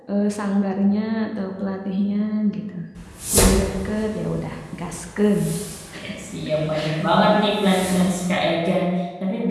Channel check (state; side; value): identical; both; correlation 1.00